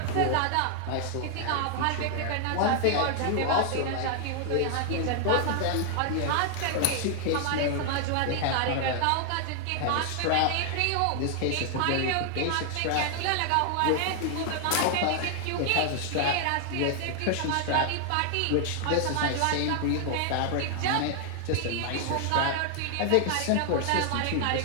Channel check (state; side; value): different; both; correlation 0.00